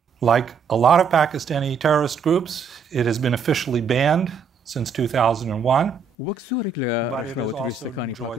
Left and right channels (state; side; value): quieter; left; 5.8 dB